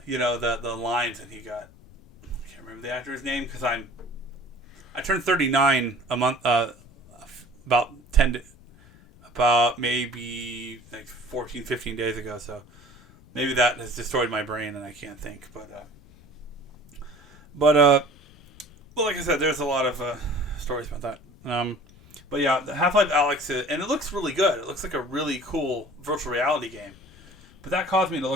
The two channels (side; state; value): left; noise; rumble, 24 dB below the sound